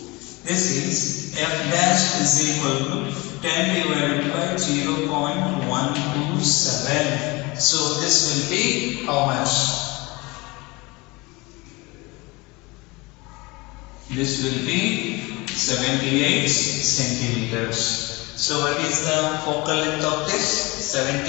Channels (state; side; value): quieter; right; 24.3 dB